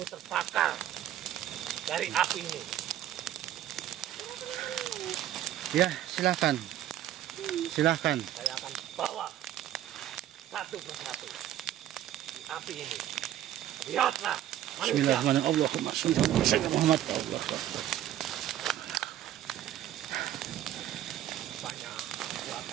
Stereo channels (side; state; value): left; quieter; 12.2 dB